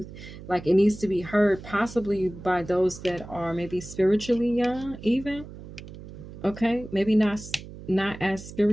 Like it needs to be heard possibly by those that are maybe spiritually young even. Okay. Maybe not as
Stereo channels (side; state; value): right; noise; hum, 14 dB below the sound